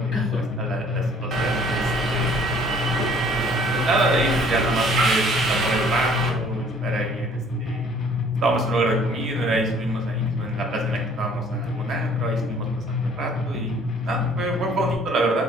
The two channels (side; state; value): both; normal; correlation 0.56